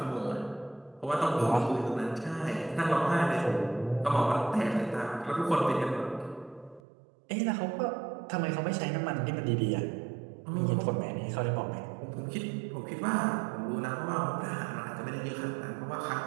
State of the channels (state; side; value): drops out; left; at 6.8 s